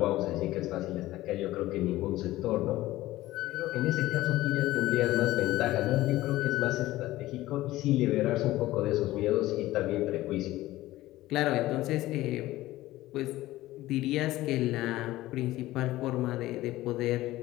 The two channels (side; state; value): right; quieter; 16.6 dB